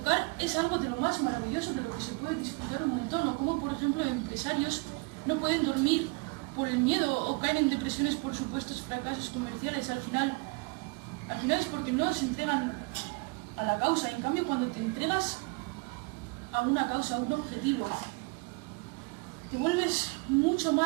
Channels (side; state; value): left; quieter; 29.3 dB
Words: es algo de lo más maravilloso, de lo que se puede disfrutar un montón, o como por ejemplo empresarios no pueden dormir por el miedo o caen en depresiones por supuestos fracasos comerciales. Al final es porque no se entregan a la causa. En cambio, cuando te entregas a una causa, a un objetivo, te vuelves mucho